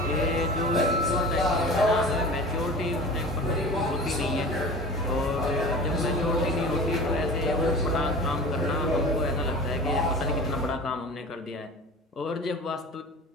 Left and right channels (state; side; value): normal; both; correlation 0.37